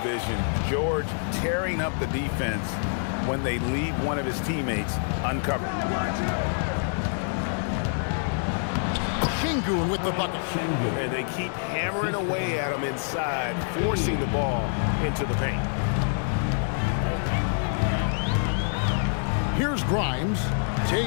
vision. George tearing up the defense when they leave one of his teammates uncovered. Şengün with the bucket. And they keep hammering away at him inside, forcing the ball into the paint. Here's Grimes.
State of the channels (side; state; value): right; silent; digital silence